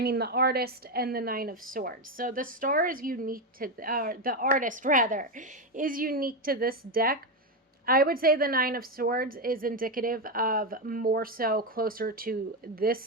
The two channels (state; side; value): normal; both; correlation 0.10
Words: artist and the Nine of Swords. So the star is unique to, the artist rather, is unique to this deck. I would say the Nine of Swords is indicative of more so closer to